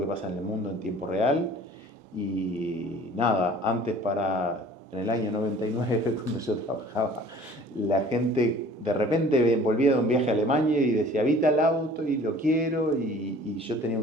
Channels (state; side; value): normal; both; correlation 0.49